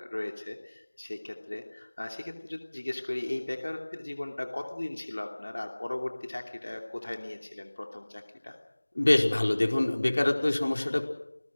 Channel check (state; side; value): inverted; both; correlation -1.00